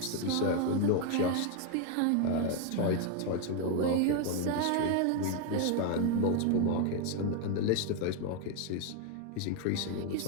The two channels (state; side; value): different; both; correlation 0.01